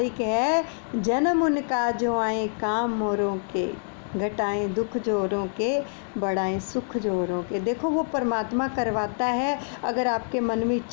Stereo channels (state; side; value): silent; right; 58 dB below the other